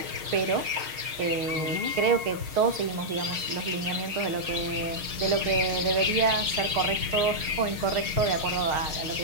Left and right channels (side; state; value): left; late; 6.5 ms